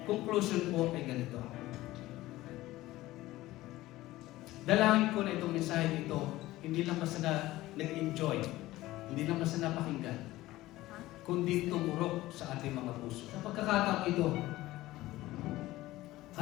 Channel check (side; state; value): right; quieter; 17.1 dB